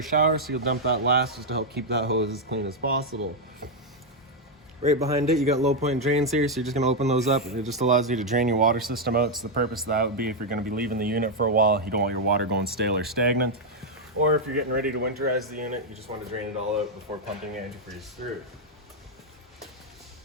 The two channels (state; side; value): normal; both; correlation 0.00